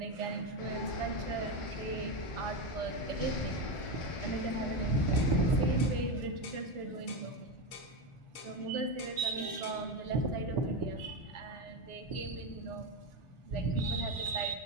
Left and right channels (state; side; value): late; right; 1.4 ms